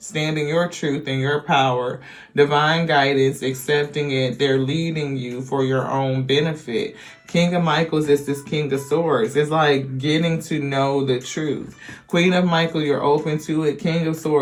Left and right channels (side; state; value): both; identical; correlation 1.00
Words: in your truth and your power, divine guidance, accepting it. They're leading you for your own benefit. King of Michaels is this King of Swords. It's like getting to know the truth. Queen of Michael, you're open to it. King of